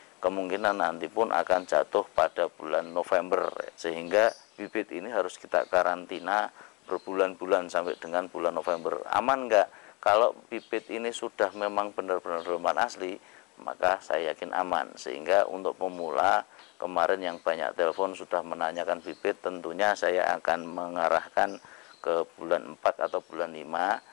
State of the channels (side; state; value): right; quieter; 26.4 dB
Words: kemungkinan nanti pun akan jatuh pada bulan November, sehingga bibit ini harus kita karantina berbulan-bulan sampai dengan bulan November. Aman enggak? Kalau bibit ini sudah memang benar-benar dorman asli, maka saya yakin aman. Sehingga untuk pemula kemarin yang banyak telepon sudah menanyakan bibit, tentunya saya akan mengarahkan ke bulan 4 atau bulan 5.